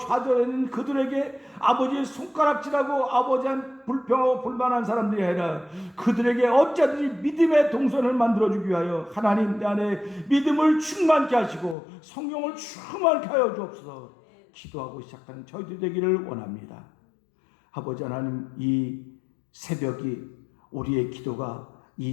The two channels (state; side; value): drops out; right; at 11.8 s